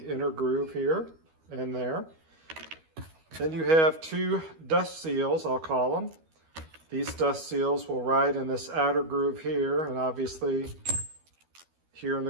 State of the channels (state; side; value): late; left; 12 ms